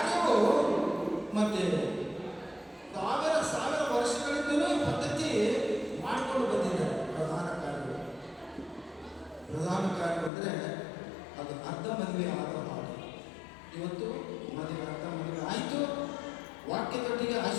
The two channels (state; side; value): drops out; right; at 10.3 s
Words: ಮತ್ತೆ ಸಾವಿರ ವರ್ಷಗಳಿಂದಲೂ ಈ ಪದ್ಧತಿ ಮಾಡಿಕೊಂಡು ಬಂದಿದ್ದಾರೆ. ಪ್ರಧಾನ ಕಾರ್ಯ ಅಂದರೆ ಅದು ಅರ್ಧ ಮದುವೆ ಆದ ಹಾಗೆ. ಇವತ್ತು ಅರ್ಧ ಮದುವೆ ಆಯಿತು. ವಾಕ್ಯದೊಟ್ಟಿಗೆ